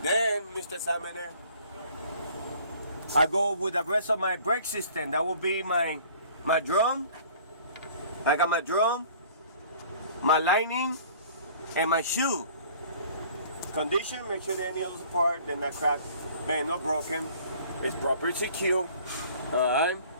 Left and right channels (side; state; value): both; inverted; correlation -0.52